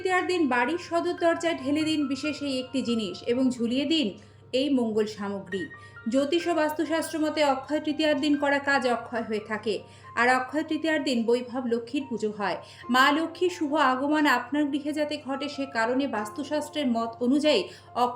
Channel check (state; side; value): identical; both; correlation 1.00